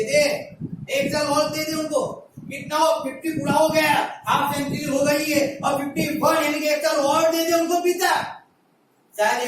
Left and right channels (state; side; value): identical; both; correlation 1.00